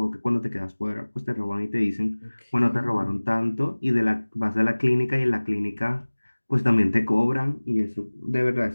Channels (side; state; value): both; inverted; correlation -1.00